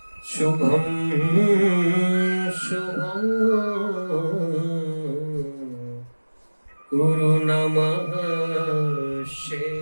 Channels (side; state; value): both; inverted; correlation -1.00